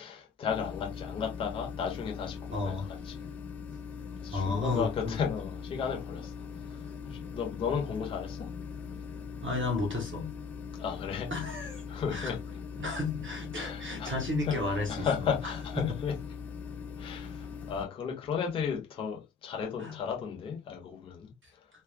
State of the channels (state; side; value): quieter; right; 5.1 dB